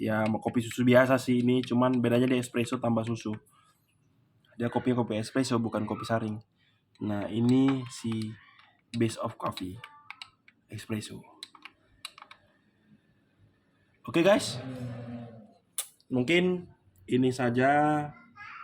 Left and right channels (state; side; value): identical; both; correlation 1.00